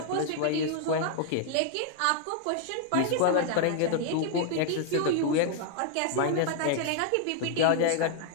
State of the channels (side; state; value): both; different; correlation 0.00